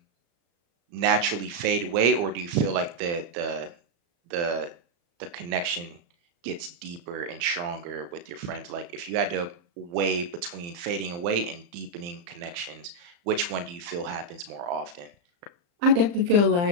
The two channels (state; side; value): late; left; 35 ms